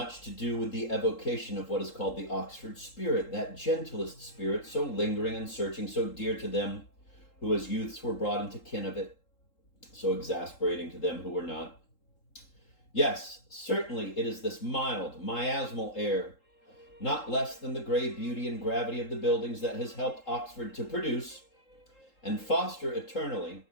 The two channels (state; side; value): late; right; 3.8 ms